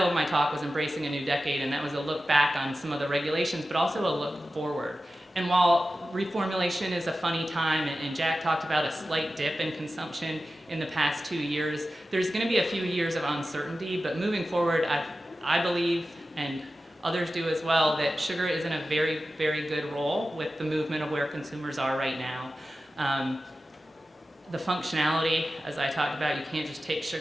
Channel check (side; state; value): both; normal; correlation 0.94